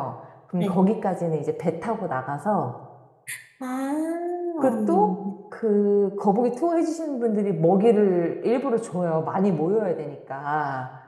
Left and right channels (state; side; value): identical; both; correlation 1.00